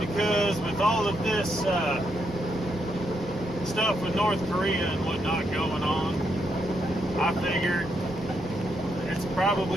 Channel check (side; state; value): both; normal; correlation 0.79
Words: with all of this stuff with North Korea and whatnot going on, I figured it's